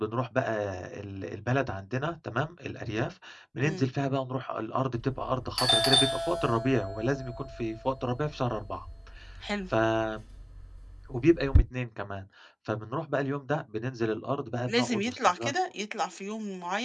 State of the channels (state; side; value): identical; both; correlation 1.00